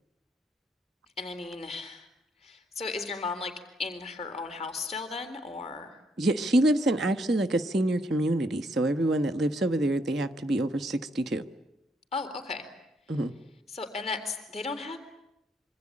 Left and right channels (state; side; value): normal; both; correlation 0.73